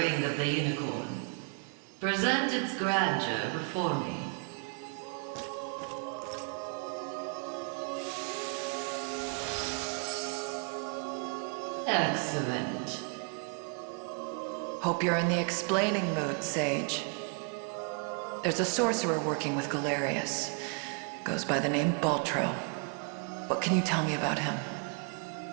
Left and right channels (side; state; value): left; quieter; 39.4 dB